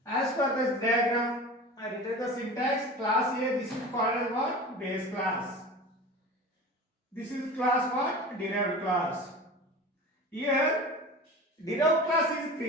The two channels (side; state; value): both; normal; correlation 0.34